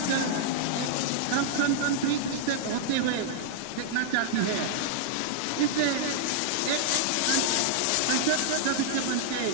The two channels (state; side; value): different; both; correlation -0.01